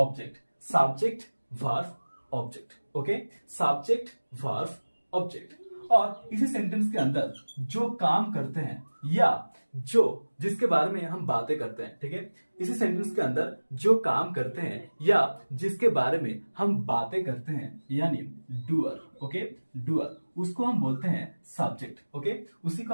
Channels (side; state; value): both; inverted; correlation -1.00